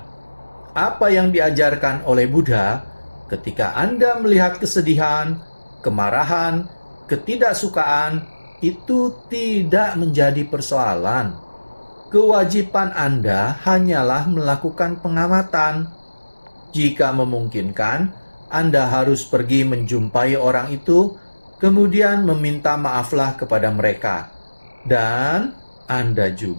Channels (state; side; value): inverted; both; correlation -1.00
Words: Apa yang diajarkan oleh Buddha, ketika Anda melihat kesedihan, kemarahan, ketidaksukaan, itu tidak menjadi persoalan. Kewajiban Anda hanyalah melakukan pengamatan. Jika memungkinkan, Anda harus pergi menjumpai orang itu, kemudian meminta maaflah kepada mereka. Dan Anda